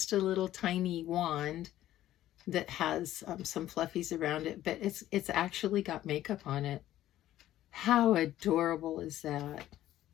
a little tiny wand that has some fluffies around it, but it's actually got makeup on it. How adorable is that?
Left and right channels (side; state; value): right; quieter; 13.5 dB